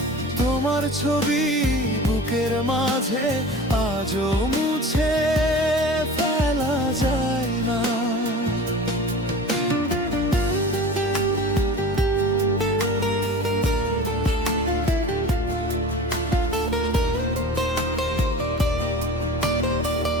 তোমার ছবি বুকের মাঝে আজও মুছে ফেলা যায় না।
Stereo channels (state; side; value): normal; both; correlation 0.37